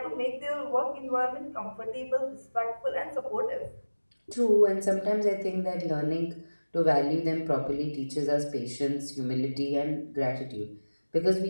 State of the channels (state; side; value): inverted; both; correlation -1.00